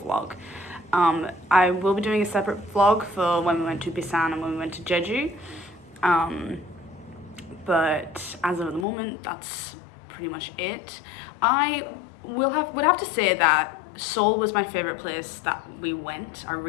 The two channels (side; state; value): right; drops out; at 8.8 s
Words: vlog. I will be doing a separate vlog for when we went to Busan and when we went to Jeju. But as of the moment, that's pretty much it. I would have to say that Seoul was my favorite place that we went. I